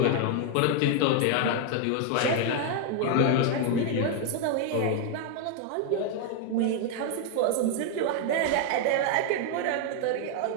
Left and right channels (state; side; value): different; both; correlation 0.00